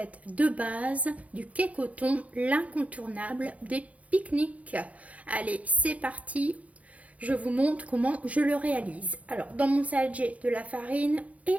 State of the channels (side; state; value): left; late; 0.067 ms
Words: de base du cake au thon, l'incontournable des pique-niques. Allez, c'est parti, je vous montre comment je le réalise. Alors, dans mon salade, j'ai de la farine et